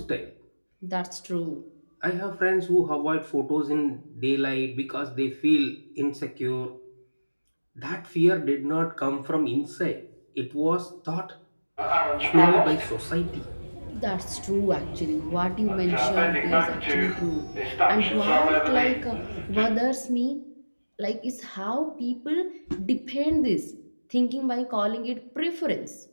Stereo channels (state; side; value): inverted; both; correlation -1.00